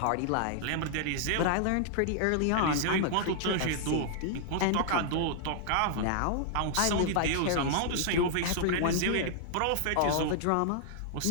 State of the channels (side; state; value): both; different; correlation -0.01